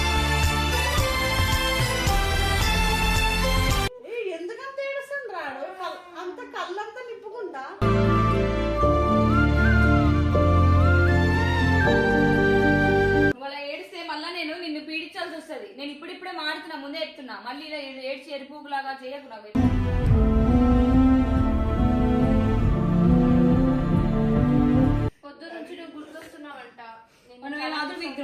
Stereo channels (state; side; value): identical; both; correlation 1.00